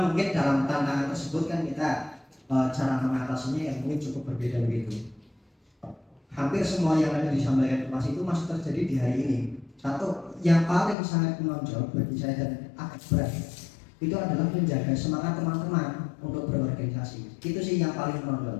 mungkin dalam tantangan tersebut kan kita cara mengatasinya yang mungkin cukup berbeda begitu. Hampir semua yang ada disampaikan Tum Asi itu masih terjadi di hari ini. Satu yang paling sangat menonjol bagi saya dan agak berat itu adalah menjaga semangat teman-teman untuk berorganisasi. Itu sih yang paling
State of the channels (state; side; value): drops out; right; at 11.0 s